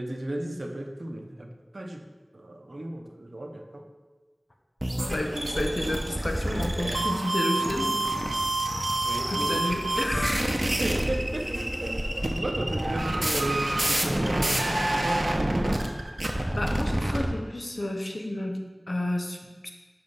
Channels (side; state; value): both; normal; correlation 0.97